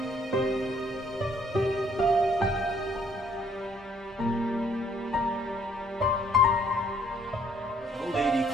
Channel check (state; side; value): normal; both; correlation 0.65